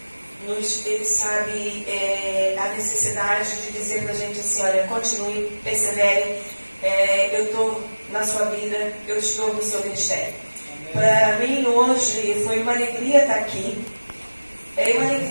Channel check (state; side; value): inverted; both; correlation -1.00